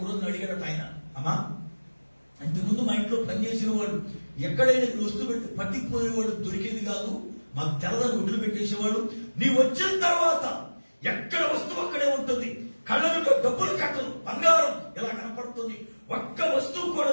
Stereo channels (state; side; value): inverted; both; correlation -1.00